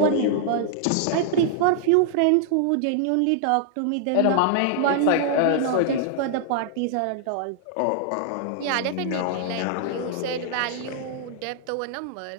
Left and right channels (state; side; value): different; both; correlation -0.01